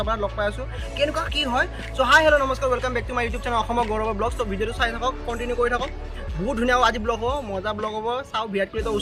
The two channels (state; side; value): identical; both; correlation 1.00